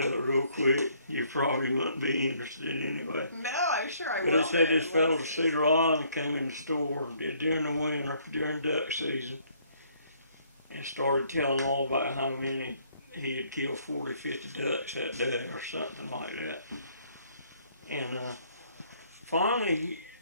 out real quick. You probably wouldn't be interested anyway. No, I'm sure I But will. they said this fellow to Cedar Island came in the store during the winter, during duck season, and started telling all about how many he had killed 40, 50 ducks that day or something like that. And finally,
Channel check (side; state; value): both; inverted; correlation -0.65